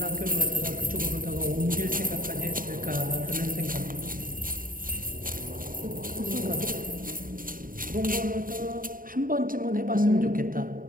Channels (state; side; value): late; left; 0.41 ms